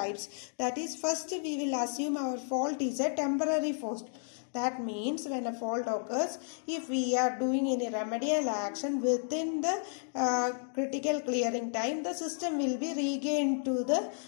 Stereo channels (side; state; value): right; silent; digital silence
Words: That is, first we will assume our fault is a temporary fault. That means when a fault occurs, if we are doing any remedial action within the critical clearing time, the system will be regained to the